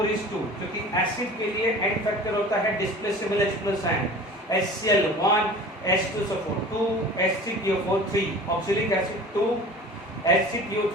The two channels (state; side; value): normal; both; correlation 0.41